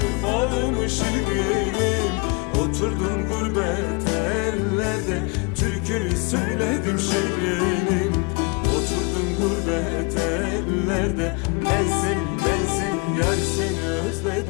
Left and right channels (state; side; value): quieter; right; 30.5 dB